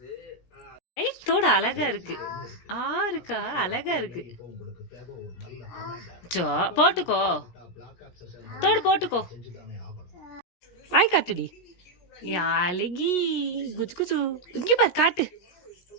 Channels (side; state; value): right; late; 17 ms